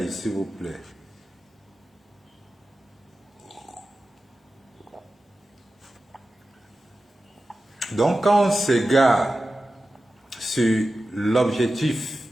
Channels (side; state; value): both; normal; correlation 0.93